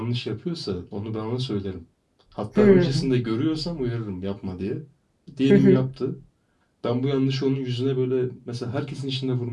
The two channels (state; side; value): identical; both; correlation 1.00